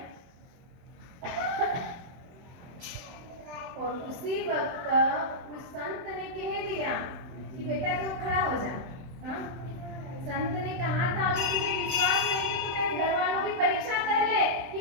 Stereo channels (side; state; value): left; late; 23 ms